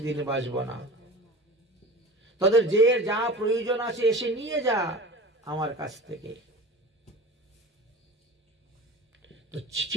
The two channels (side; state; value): both; normal; correlation 0.34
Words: দিন বাঁচবো না, তাদের যে যা প্রয়োজন আছে এসে নিয়ে যা আমার কাছ থেকে। তো